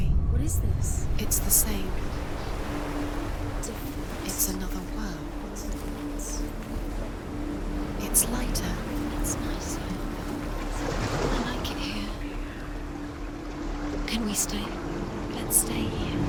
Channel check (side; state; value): both; identical; correlation 1.00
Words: What is this? It's the same. It's another world. It's lighter. It's nicer. I like it here. Can we stay? Let's stay here.